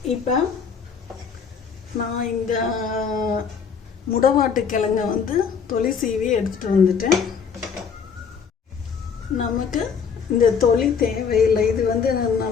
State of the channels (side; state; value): right; quieter; 6.4 dB